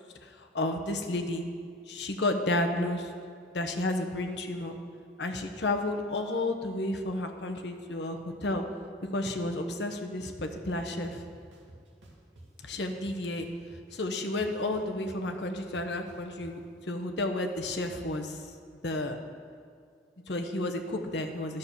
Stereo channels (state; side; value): normal; both; correlation 0.37